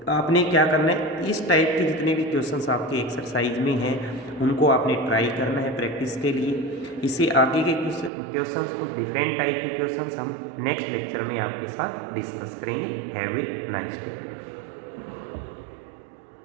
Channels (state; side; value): drops out; left; at 8.1 s